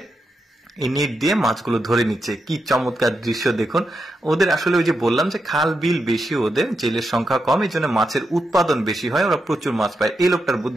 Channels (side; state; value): both; normal; correlation 0.85